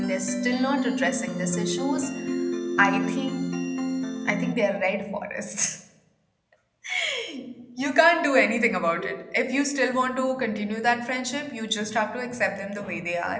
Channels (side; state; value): both; identical; correlation 1.00